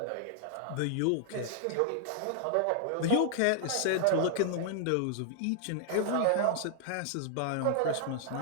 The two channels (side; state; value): both; different; correlation -0.01